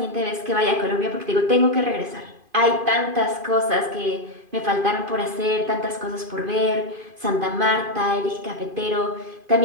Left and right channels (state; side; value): late; left; 2.5 ms